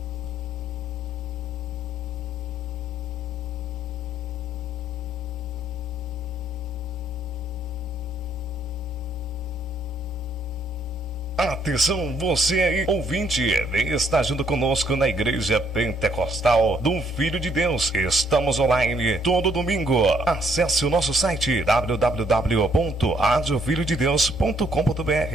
Atenção, você aí, ouvinte, está junto conosco na Igreja Pentecostal do Filho de Deus. Estamos online todo domingo. Acesse o nosso site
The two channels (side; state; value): both; normal; correlation 0.68